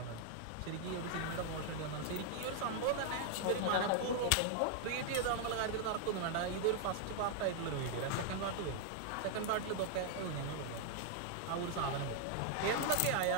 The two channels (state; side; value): different; both; correlation 0.00